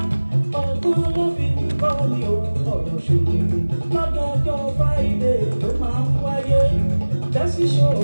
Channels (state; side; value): inverted; both; correlation -1.00